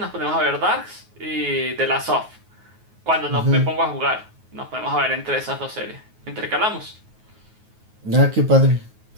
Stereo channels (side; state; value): left; late; 9.4 ms